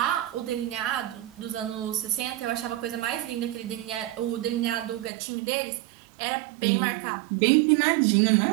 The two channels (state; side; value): drops out; left; at 5.1 s